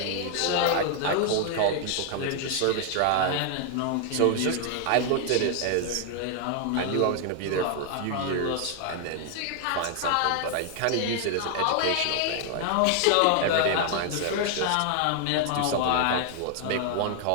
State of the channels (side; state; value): both; different; correlation 0.00